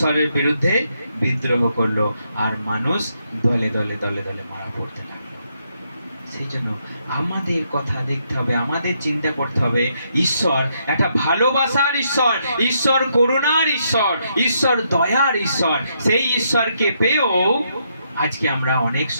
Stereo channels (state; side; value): inverted; both; correlation -0.77